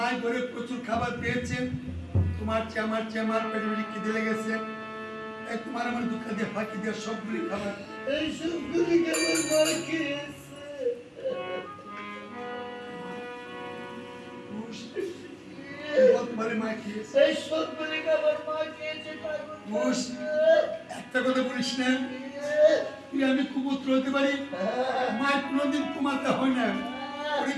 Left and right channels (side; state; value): both; identical; correlation 1.00